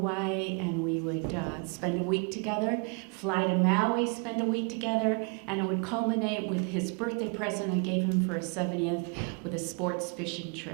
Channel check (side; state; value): left; quieter; 36.0 dB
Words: and we would spend a week together, fly to Maui, spend a week together, and it would culminate with his birthday present I gave him for his 70th with a sports fishing